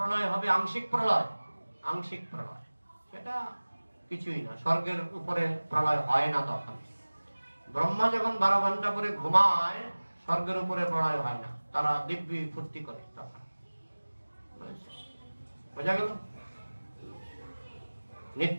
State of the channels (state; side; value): inverted; both; correlation -1.00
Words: হবে, আংশিক প্রলয়। আংশিক প্রলয় সেটা কিছুই না, স্বর্গের উপরে প্রলয় হয় না তখন। ব্রহ্মা যখন 12 ঘন্টা পরে ঘুমায়, স্বর্গের উপরে প্রলয় হয় না, তারা দিব্যি ফুর্তি করে তখন। বোঝা গেল?